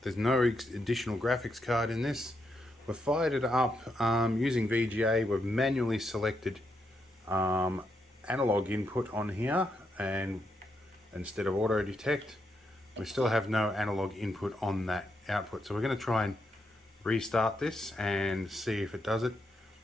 no additional graphics card in this. We've fired it up using VGA. We've manually selected analog input on here, and instead of auto detect, we still have no analog input on that output. So we're going to try and restart this and see if it does it.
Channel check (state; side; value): normal; both; correlation 0.81